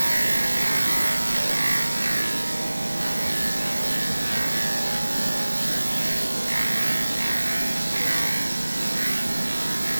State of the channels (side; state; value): both; inverted; correlation -1.00